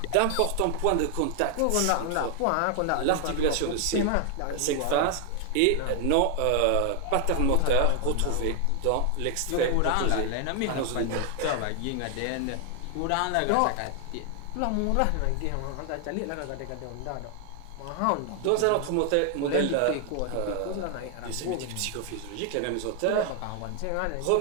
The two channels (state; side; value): different; both; correlation 0.00